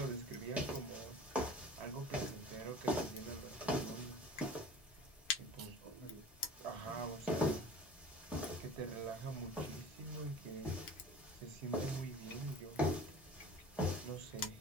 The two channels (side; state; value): both; normal; correlation 0.42